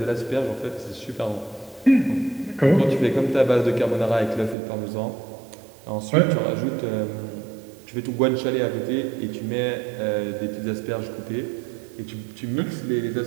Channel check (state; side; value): drops out; left; at 4.5 s